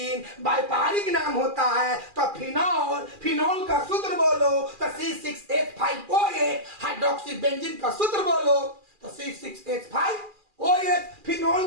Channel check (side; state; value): left; late; 2.4 ms